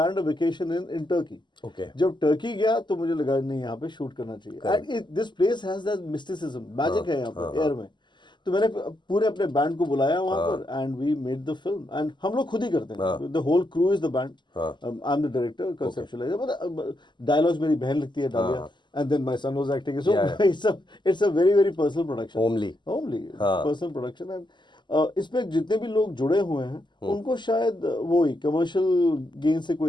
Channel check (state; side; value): late; right; 0.22 ms